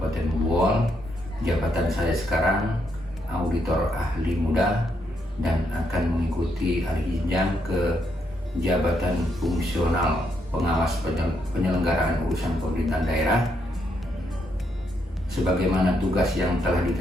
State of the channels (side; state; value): both; normal; correlation 0.77